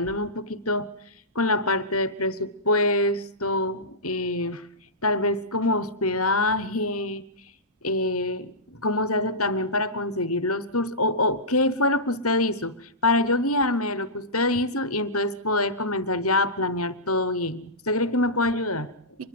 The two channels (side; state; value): both; normal; correlation -0.16